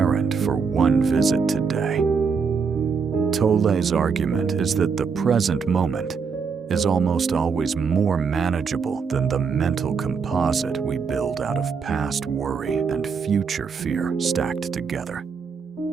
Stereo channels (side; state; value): left; quieter; 5.6 dB